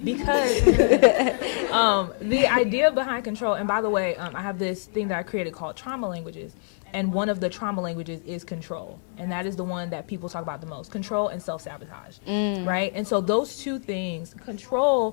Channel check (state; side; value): silent; right; 61 dB below the other